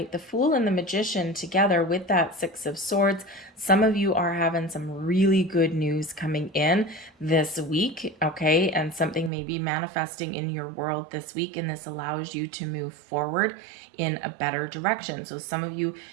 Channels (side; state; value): left; drops out; at 9.3 s